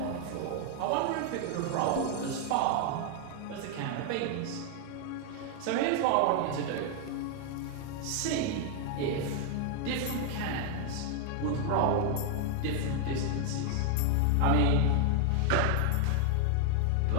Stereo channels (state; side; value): different; both; correlation 0.00